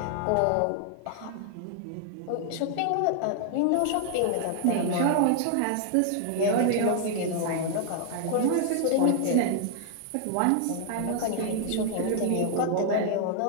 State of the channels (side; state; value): both; different; correlation 0.00